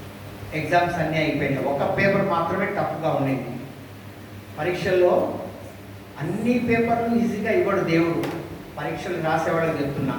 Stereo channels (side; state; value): both; identical; correlation 1.00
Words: ఎగ్జామ్స్ అన్నీ అయిపోయినాయి. ఒక పేపర్ మాత్రమే టఫ్గా ఉండేది. పరీక్షల్లో అన్ని పేపర్లు ఈజీగా ఇవ్వడు దేవుడు. పరీక్షలు రాసేవాళ్ళకి చెప్తున్నా,